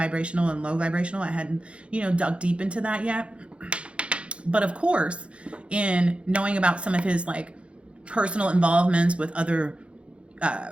and low vibrational. I hadn't, dug deep into that yet. But of course, in knowing about some of his like personal involvements with other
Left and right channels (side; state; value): left; late; 0.060 ms